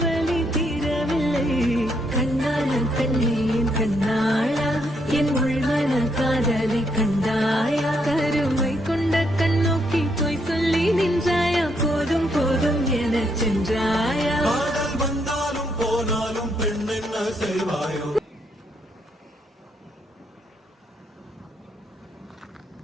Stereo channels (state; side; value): normal; both; correlation 0.75